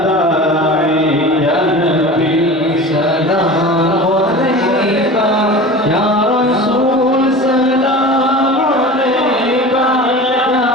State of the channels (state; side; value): normal; both; correlation 0.35